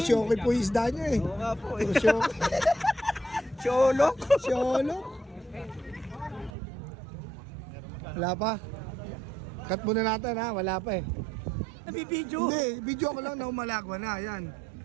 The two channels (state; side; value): drops out; left; at 6.5 s